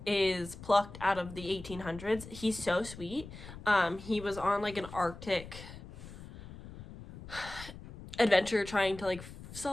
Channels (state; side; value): noise; left; rumble, 14 dB below the sound